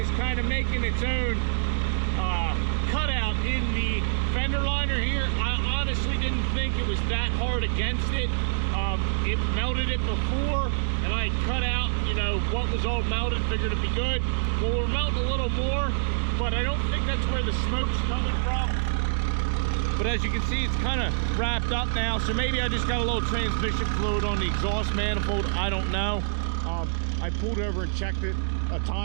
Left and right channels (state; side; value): silent; left; digital silence